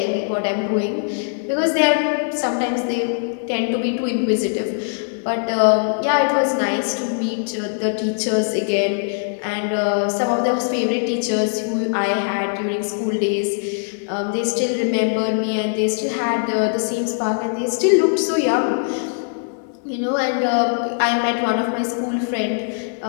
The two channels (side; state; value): right; silent; digital silence